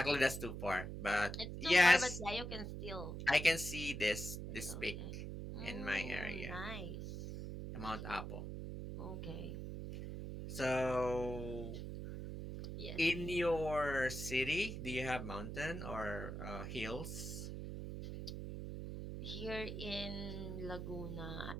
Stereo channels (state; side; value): noise; right; hum, 6 dB below the sound